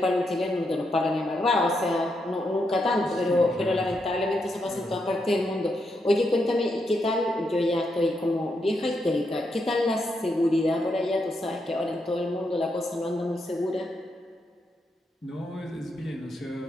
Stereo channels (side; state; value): both; normal; correlation 0.81